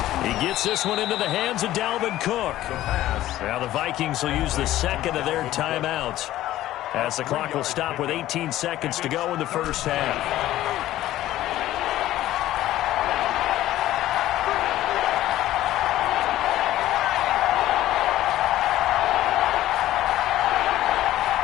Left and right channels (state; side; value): quieter; right; 14.4 dB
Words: He gets this one into the hands of Dalvin Cook. Now the Vikings will use the second of their timeouts, as the clock will stop with 18 seconds to go in the first half.